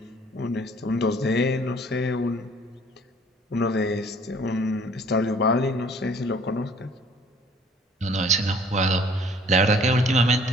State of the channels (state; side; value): normal; both; correlation 0.56